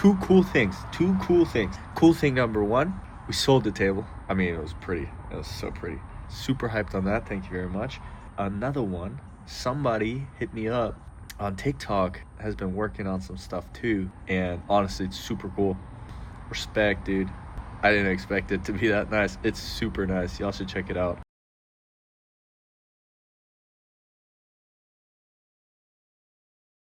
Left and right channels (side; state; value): both; identical; correlation 1.00